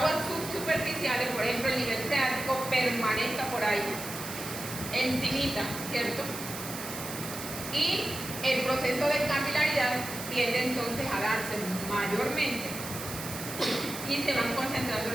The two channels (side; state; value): right; noise; hiss, 9 dB below the sound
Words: subsuperficiales, por ejemplo el nivel freático, permanezca por ahí, encimita, ¿cierto? Y el proceso de capilaridad tiende entonces a darse mayormente y se van concentrando